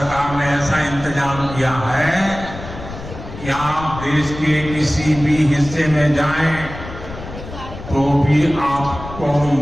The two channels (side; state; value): left; noise; rumble, 12 dB below the sound